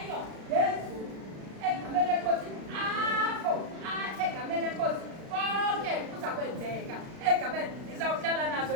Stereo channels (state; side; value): late; left; 36 ms